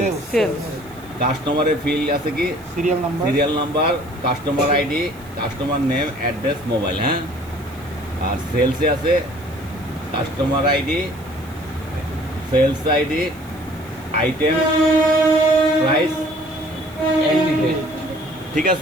কাস্টমারের ফিল্ড আছে কি serial number, customer ID, customer name, address, mobile. হ্যাঁ, আর সেলসে আছে customer ID, sales ID, item, price, ঠিক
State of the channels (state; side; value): noise; right; hiss, 25 dB below the sound